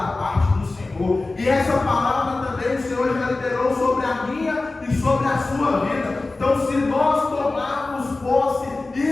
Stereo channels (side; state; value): right; quieter; 3.3 dB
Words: parte do Senhor. E essa palavra também o Senhor já liberou sobre a minha e sobre a sua vida. Então, se nós tomarmos posse,